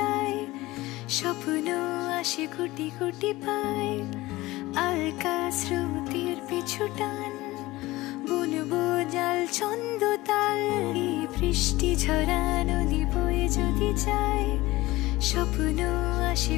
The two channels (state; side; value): quieter; right; 19.1 dB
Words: স্বপ্ন আসে কোটি কোটি পায়। আলকা স্রোতের পিছু টান, বুনবো জাল ছন্দ তাল। এই বৃষ্টি ঝরা নদী বয়ে যদি যায়, স্বপ্ন আসে